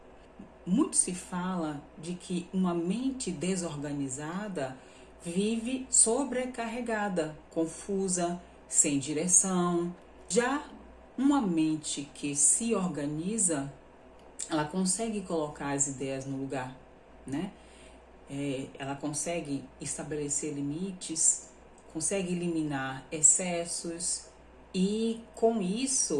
Muito se fala de que uma mente desorganizada vive sobrecarregada, confusa, sem direção. Já uma mente que se organiza, ela consegue colocar as ideias no lugar, né? Ela consegue estabelecer limites, consegue eliminar excessos e, com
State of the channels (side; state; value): both; identical; correlation 1.00